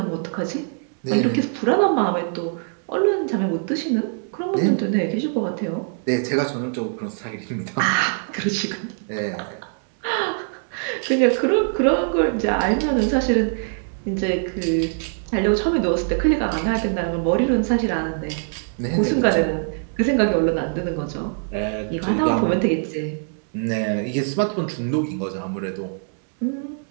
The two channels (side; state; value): left; silent; 64 dB below the other